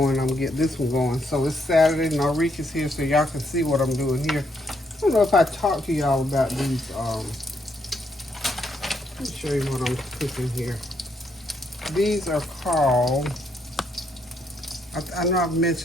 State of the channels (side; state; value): both; normal; correlation 0.75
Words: I'm gonna get this one going. So it's Saturday. Narika's here, so y'all can see what I'm doing here. I don't know if I talked to y'all about these. Let me show you what I'm cooking here. These are called, I know I've